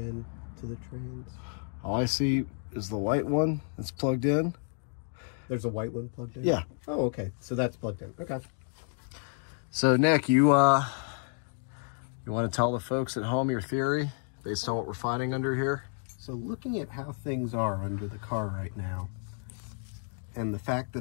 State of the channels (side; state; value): right; silent; 57 dB below the other